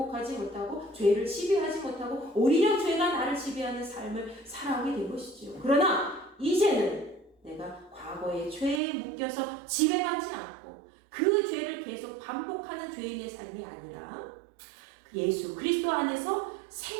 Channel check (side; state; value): left; drops out; at 8.8 s